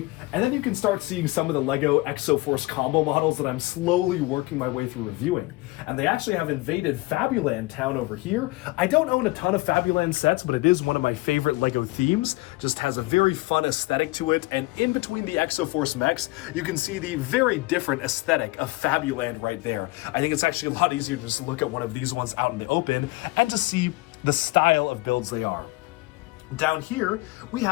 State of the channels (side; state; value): right; quieter; 21.4 dB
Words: And then you can start seeing some of the Lego Exoforce combo models that I'm slowly working my way through reviewing. And they actually have invaded Fabuland Town over here. I don't own a ton of Fabuland sets, but it is one of my favorite Lego themes. Just has a very fun aesthetic to it. And in between the Exoforce mechs, you can see the very different aesthetic of Fabuland right there. I think it's actually a lot easier to just look at one of these ones out in the open and to see the style of builds they are. Down here, we